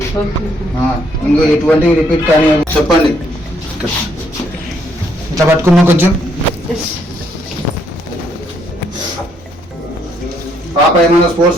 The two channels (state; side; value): normal; both; correlation 0.71